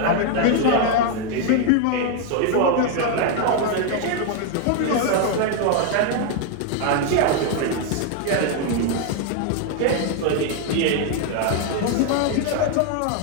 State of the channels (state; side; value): different; both; correlation 0.00